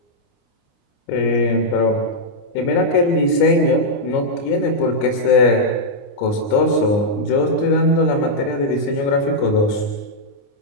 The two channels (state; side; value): late; right; 29 ms